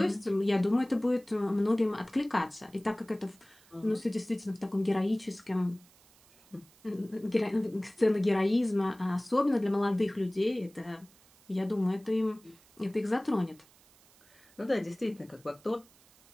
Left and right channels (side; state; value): right; noise; hiss, 28 dB below the sound